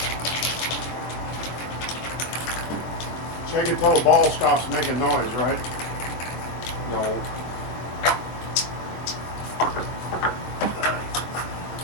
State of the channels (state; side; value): late; right; 23 ms